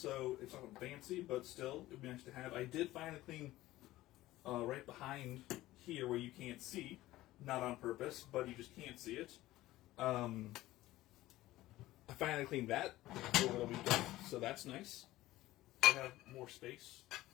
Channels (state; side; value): quieter; right; 16.5 dB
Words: it's not fancy, but still, it would be nice to have. I did finally clean right behind here where you can't see, not on purpose, but you just can't see it. I finally cleaned that over the weekend, so that's nice. I have more space.